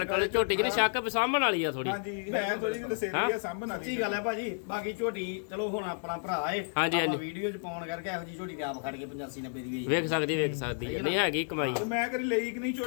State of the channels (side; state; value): right; silent; digital silence